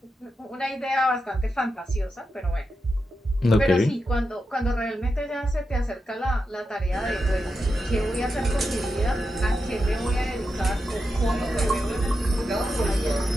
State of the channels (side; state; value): both; normal; correlation 0.88